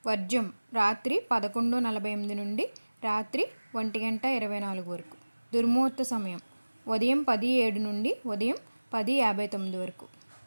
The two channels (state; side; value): inverted; both; correlation -1.00